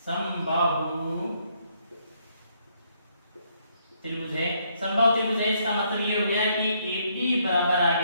समबाहु त्रिभुज है। समबाहु त्रिभुज है, इसका मतलब ये हो गया कि AB बराबर आ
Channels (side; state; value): both; inverted; correlation -0.72